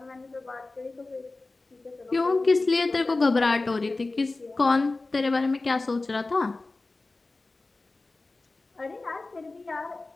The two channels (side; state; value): right; quieter; 3.3 dB